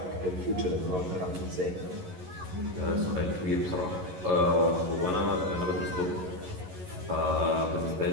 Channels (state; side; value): late; left; 11 ms